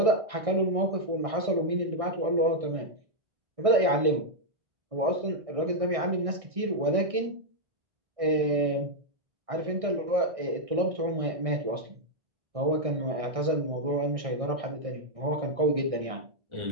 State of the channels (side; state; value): left; late; 1.6 ms